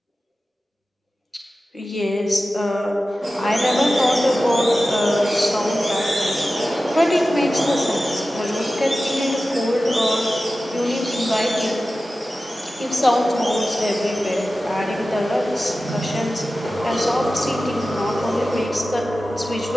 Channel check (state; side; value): normal; both; correlation 0.95